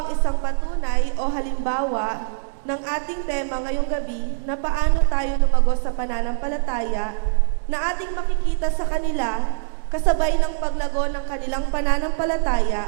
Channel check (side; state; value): left; silent; digital silence